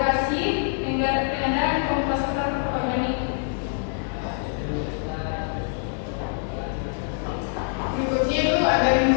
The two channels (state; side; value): silent; right; 60 dB below the other